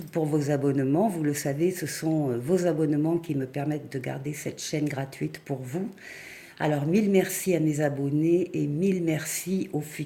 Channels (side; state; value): both; identical; correlation 1.00